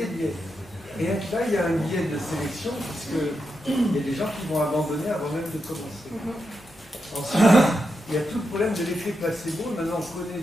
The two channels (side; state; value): both; normal; correlation 0.86